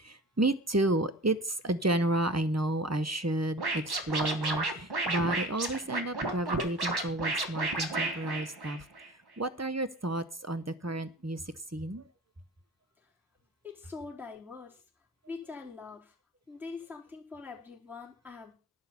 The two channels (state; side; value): normal; both; correlation 0.39